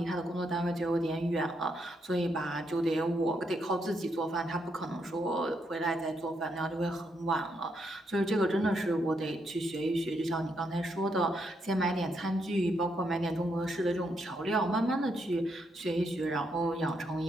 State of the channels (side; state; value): both; normal; correlation 0.78